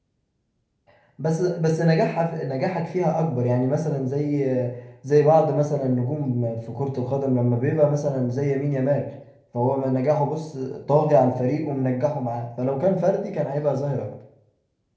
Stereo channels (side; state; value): both; identical; correlation 1.00